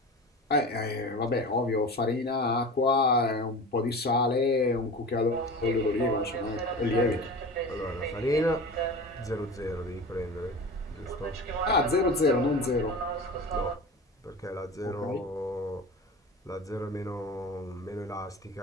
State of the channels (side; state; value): both; normal; correlation 0.33